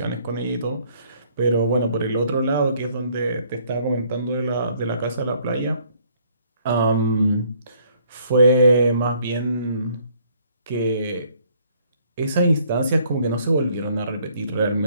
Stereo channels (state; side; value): inverted; both; correlation -0.63